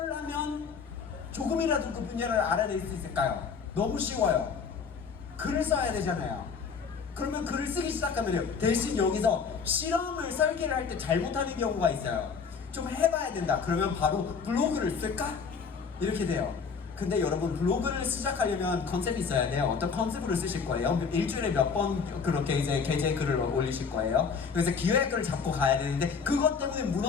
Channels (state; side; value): quieter; right; 5.8 dB